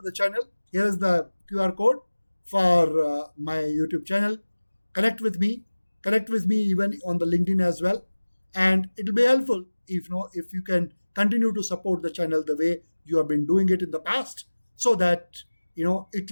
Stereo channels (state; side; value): inverted; both; correlation -1.00